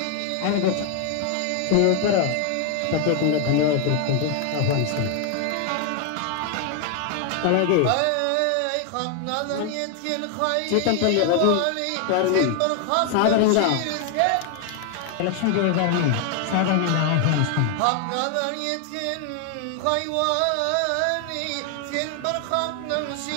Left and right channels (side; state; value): both; different; correlation 0.00